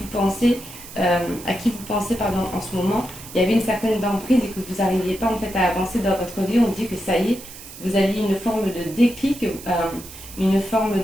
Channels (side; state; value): right; noise; hiss, 15 dB below the sound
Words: pensez, à qui vous pensez pardon, en ce moment, il y avait une certaine emprise et que vous n'arriviez pas en fait à avancer dans votre vie. On dit que ça y est, vous avez une forme de déclic, une forme